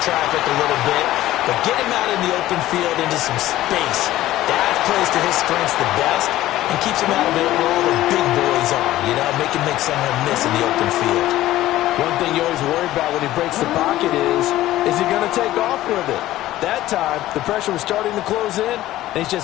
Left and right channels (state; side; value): quieter; right; 15.1 dB